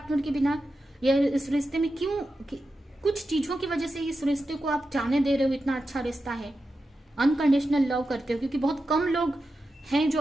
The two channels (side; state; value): both; normal; correlation 0.90